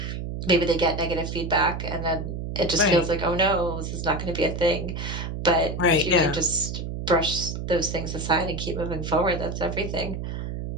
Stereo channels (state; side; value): noise; right; hum, 5 dB below the sound